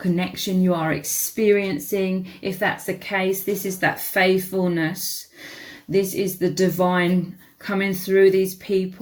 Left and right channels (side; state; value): both; identical; correlation 1.00